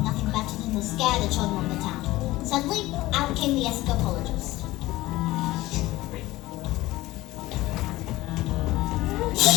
nothing better than to scare the children of the town. Suddenly, out came the escapologist.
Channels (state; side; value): quieter; right; 18.0 dB